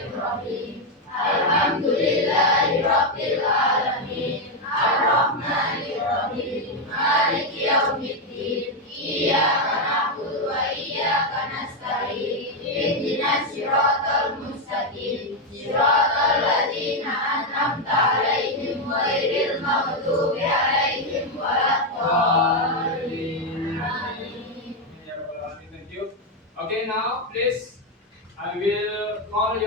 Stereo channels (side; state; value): both; normal; correlation 0.04